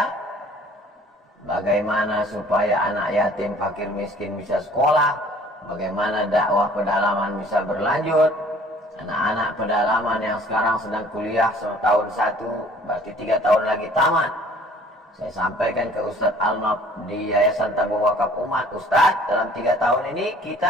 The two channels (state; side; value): normal; both; correlation 0.53